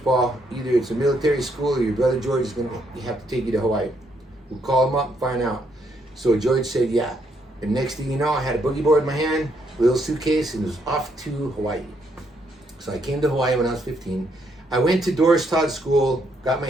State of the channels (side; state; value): both; normal; correlation 0.74